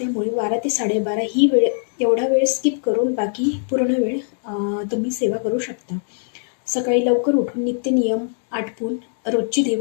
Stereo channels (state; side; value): silent; right; digital silence